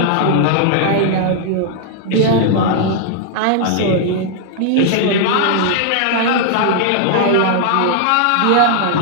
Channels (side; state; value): both; different; correlation 0.00